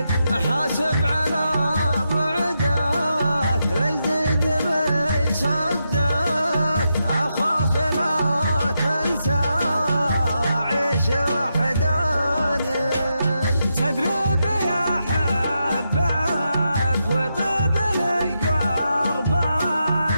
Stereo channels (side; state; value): both; inverted; correlation -0.84